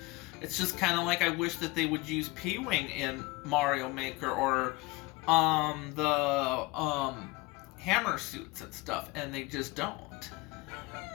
It's just kind of like I wish that they would use P-Wing in Mario Maker or the hammer suits and stuff, and they just don't.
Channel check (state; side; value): quieter; right; 23.1 dB